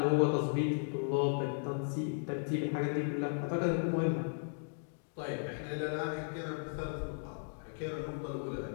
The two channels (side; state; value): right; silent; digital silence